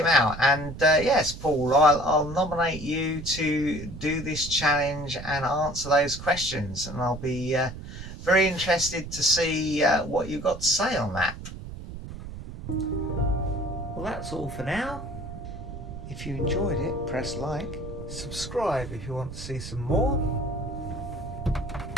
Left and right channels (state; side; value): noise; right; rumble, 11 dB below the sound